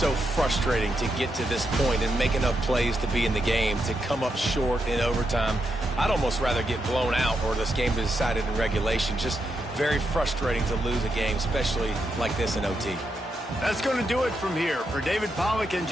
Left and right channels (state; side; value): normal; both; correlation 0.83